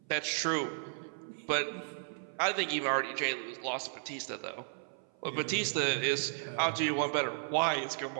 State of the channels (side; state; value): left; silent; 55 dB below the other